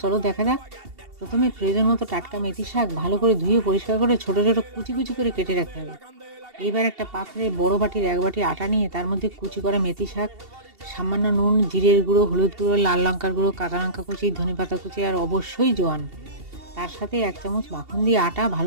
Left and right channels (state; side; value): late; left; 2.7 ms